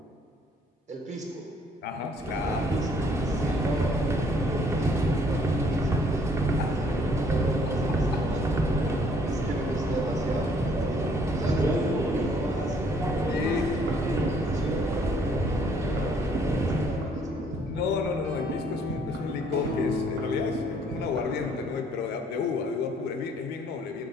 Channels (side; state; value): both; normal; correlation 0.63